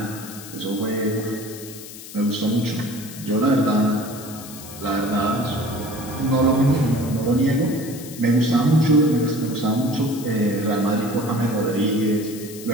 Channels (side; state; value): left; noise; hiss, 14 dB below the sound